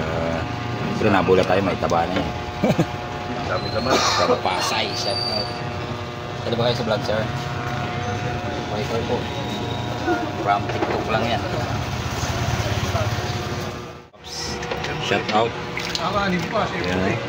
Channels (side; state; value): both; identical; correlation 1.00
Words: Pero nabula tayo, may taba na yan. Dami naman. Pero Pasay, shout out. Ano ba kayo sa vlog, sir? Okay po. From TikTok lang yan. Shout out. Yan.